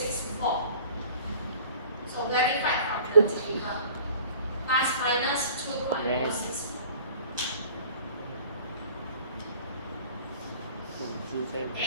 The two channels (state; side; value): inverted; both; correlation -0.48